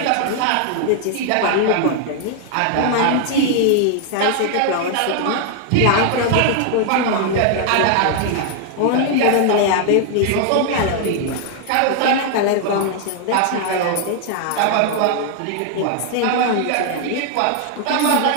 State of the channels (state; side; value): different; both; correlation 0.00